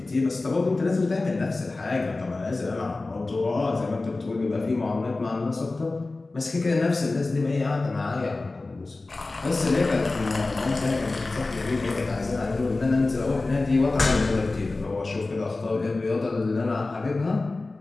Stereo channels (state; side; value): quieter; right; 3.3 dB